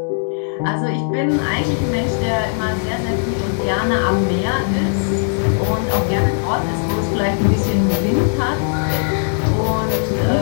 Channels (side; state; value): right; silent; digital silence